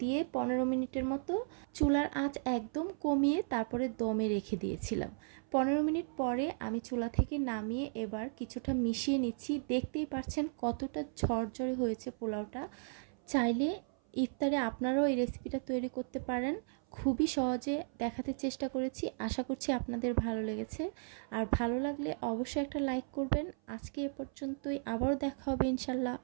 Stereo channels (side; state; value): left; silent; 54 dB below the other